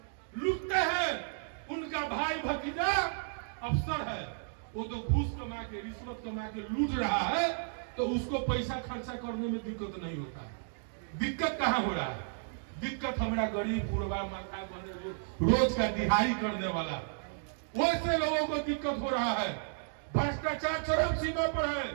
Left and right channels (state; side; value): silent; left; digital silence